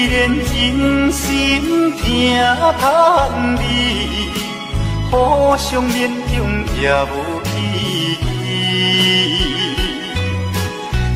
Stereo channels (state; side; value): identical; both; correlation 1.00